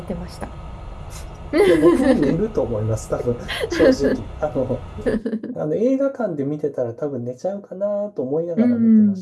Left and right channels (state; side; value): identical; both; correlation 1.00